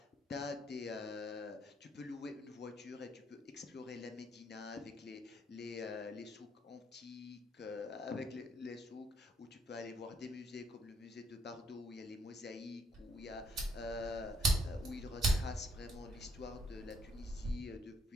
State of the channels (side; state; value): both; normal; correlation 0.69